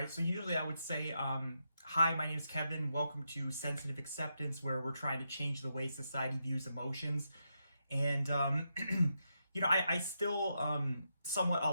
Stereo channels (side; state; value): both; inverted; correlation -0.84